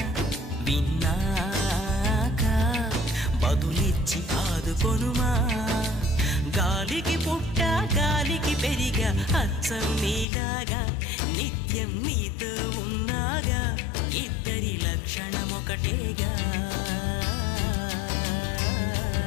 విన్నాక బదులిచ్చి ఆదుకొనుమా గాలికి పుట్ట గాలికి పెరిగా అచ్చం నీలాగా నిత్యం నీతో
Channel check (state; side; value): drops out; right; at 10.2 s